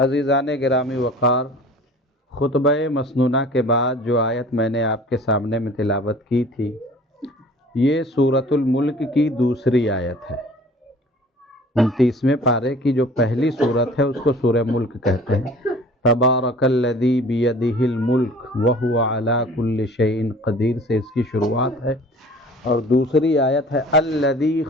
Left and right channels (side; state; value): both; normal; correlation 0.47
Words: گرامی وقار، خطبہ مسنونہ کے بعد جو آیت میں نے آپ کے سامنے میں تلاوت کی تھی، یہ سورۃ الملک کی دوسری آیت ہے۔ 29ویں پارے کی جو پہلی سورت ہے اس کو سورہ ملک کہتے ہیں۔ تبارک الذی بیدہ الملک وہو علی کل شیء قدیر سے اس کی شروعات ہے، اور دوسری آیت ہے الذی